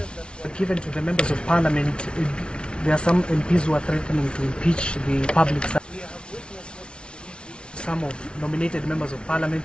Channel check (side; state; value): right; late; 0.057 ms